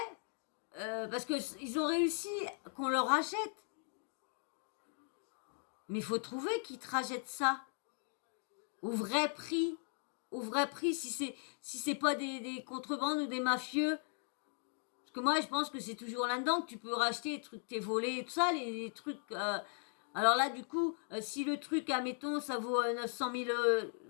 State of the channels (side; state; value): right; silent; 52 dB below the other